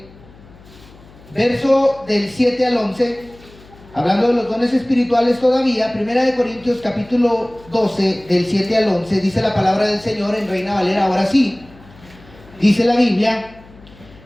verso del 7 al 11, hablando de los dones espirituales todavía. 1 Corintios capítulo 12, del 7 al 11, dice la palabra del Señor en Reina Valera. Ahora sí, dice la Biblia:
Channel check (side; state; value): left; noise; hum, 23 dB below the sound